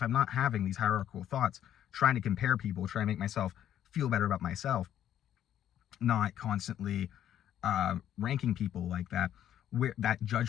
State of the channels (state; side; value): quieter; right; 10.8 dB